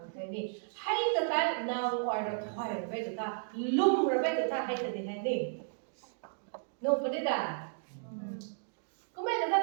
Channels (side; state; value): left; silent; digital silence